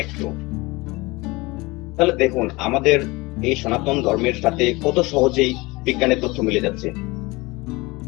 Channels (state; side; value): quieter; right; 23.3 dB